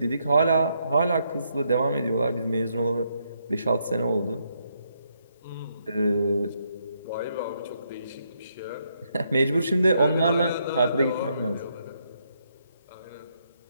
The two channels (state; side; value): inverted; both; correlation -0.76